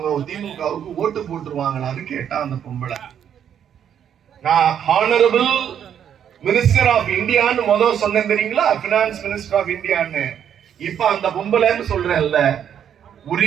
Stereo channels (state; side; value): quieter; left; 9.0 dB